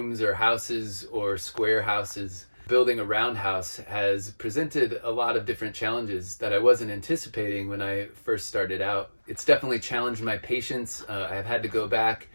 or houses or square houses. Building a roundhouse has presented a lot of different challenges that I wasn't anticipating when I first started out. It's definitely challenged my patience. I've had to go back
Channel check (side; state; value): both; inverted; correlation -1.00